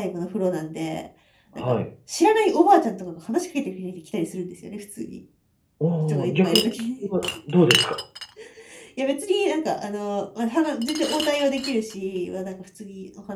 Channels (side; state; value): both; identical; correlation 1.00